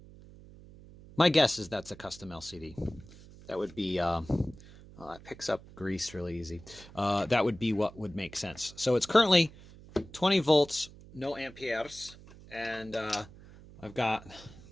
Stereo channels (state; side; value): noise; right; hum, 20 dB below the sound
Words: My guess is that's a custom LCD. That would be, it picks up grease really easy. That would be what would make sense. So it's currently 20 volts, no amperes. And I've got